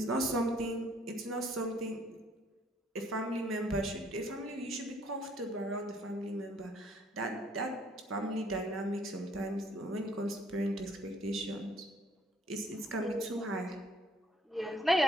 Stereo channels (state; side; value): normal; both; correlation 0.62